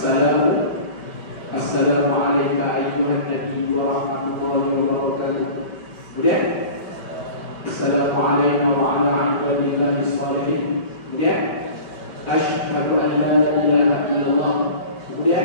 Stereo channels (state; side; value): late; right; 5.2 ms